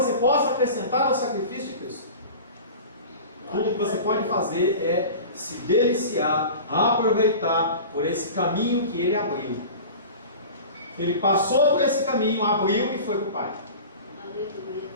possa acrescentar ao sacrifício de Cristo. Tudo que você pode fazer é se deliciar, aproveitar por esse caminho que ele abriu. Ele passou por esse caminho, abriu e foi para o Pai. Aleluia.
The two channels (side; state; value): both; inverted; correlation -0.36